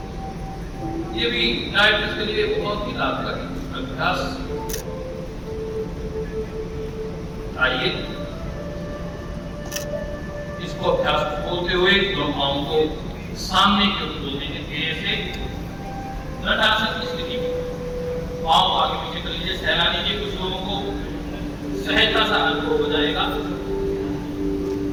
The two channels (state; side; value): identical; both; correlation 1.00